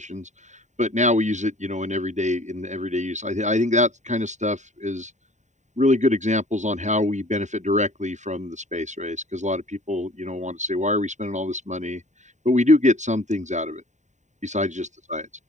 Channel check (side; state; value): left; late; 0.34 ms